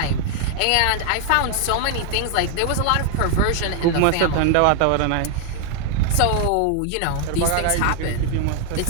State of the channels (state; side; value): different; both; correlation 0.00